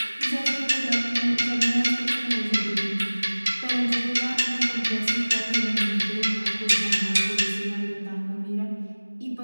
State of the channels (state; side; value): inverted; both; correlation -1.00